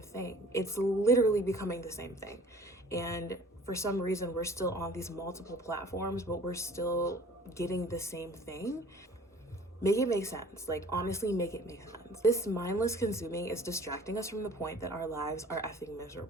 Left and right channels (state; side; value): normal; both; correlation 0.50